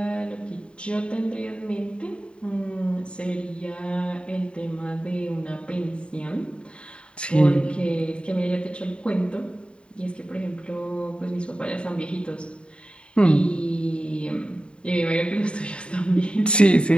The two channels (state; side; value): late; right; 0.054 ms